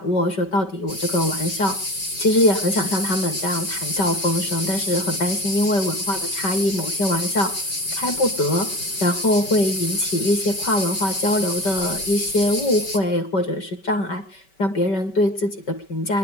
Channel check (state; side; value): late; right; 5.2 ms